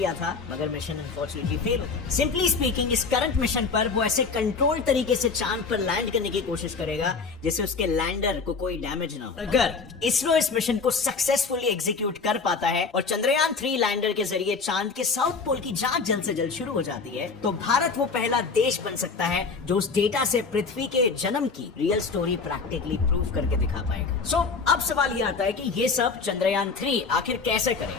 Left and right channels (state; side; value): quieter; right; 4.8 dB